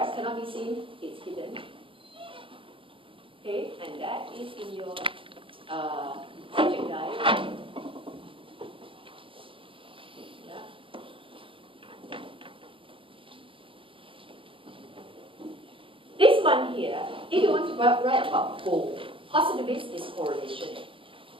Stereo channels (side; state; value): left; late; 0.25 ms